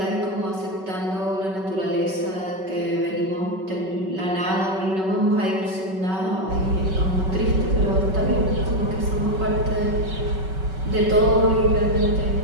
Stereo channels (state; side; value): late; left; 5.3 ms